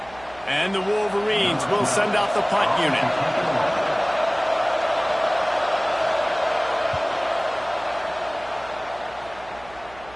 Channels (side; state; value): right; noise; hum, 22 dB below the sound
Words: And the Wolverines will send out the punt unit.